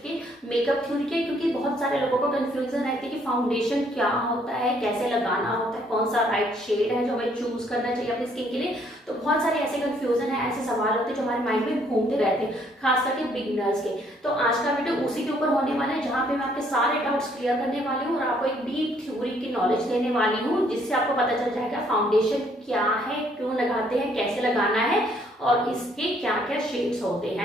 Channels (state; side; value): normal; both; correlation 0.66